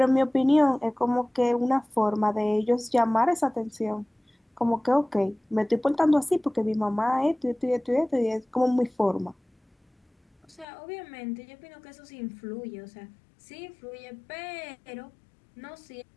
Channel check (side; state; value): right; drops out; at 10.7 s